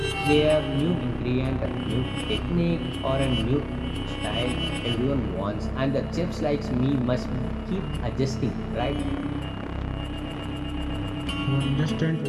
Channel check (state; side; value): identical; both; correlation 1.00